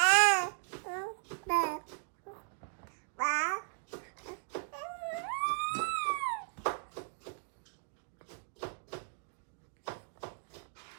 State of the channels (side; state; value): left; silent; digital silence